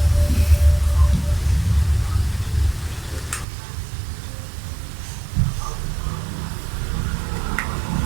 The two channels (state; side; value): drops out; left; at 3.5 s